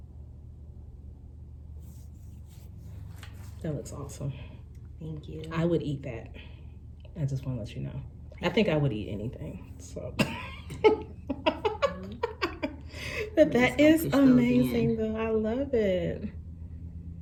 That looks awesome. Thank you. I would eat that. I just want to let you know. I think I would eat anything. So, but that is amazing, though. I love it.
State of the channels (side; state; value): both; identical; correlation 1.00